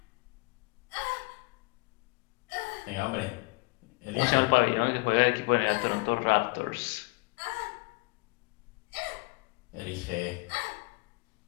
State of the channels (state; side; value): quieter; right; 26.7 dB